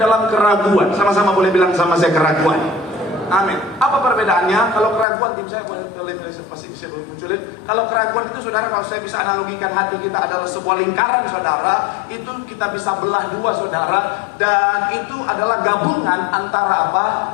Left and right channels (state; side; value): drops out; right; at 5.1 s